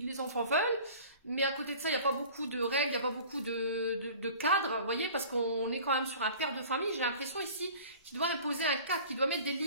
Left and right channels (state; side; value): inverted; both; correlation -0.44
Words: les enfants veulent. Mais à côté de ça, il n'y a pas beaucoup de règles, il n'y a pas beaucoup de cadres, vous voyez, parce qu'on est quand même sur un père de famille. J'ai l'impression ici qu'il doit imposer un cadre, qu'il doit mettre des